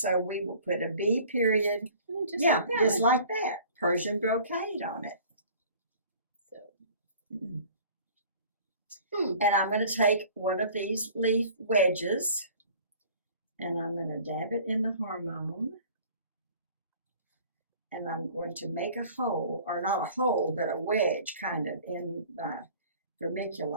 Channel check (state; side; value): inverted; both; correlation -0.49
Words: we will put a B period, Just yeah, like that just one. like that, Persian brocade on it. So. And I'm going to take one of these leaf wedges and I'm going to dab it in the hormone. And I'm going to make a hole, or not a hole, but a wedge kind of in my